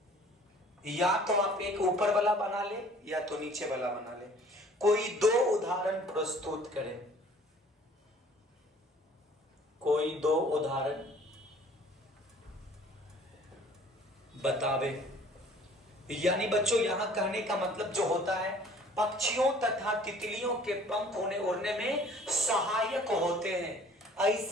या तो आप एक ऊपर वाला बना ले या तो नीचे वाला बना ले। कोई दो उदाहरण प्रस्तुत करें, कोई दो उदाहरण बतावे। यानी बच्चों यहां कहने का मतलब जो होता है, पक्षियों तथा तितलियों के पंख उन्हें उड़ने में सहायक होते हैं।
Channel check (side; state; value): both; normal; correlation 0.53